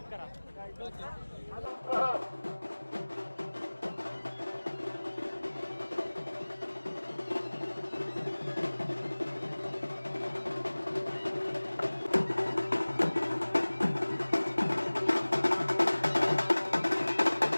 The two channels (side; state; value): both; inverted; correlation -1.00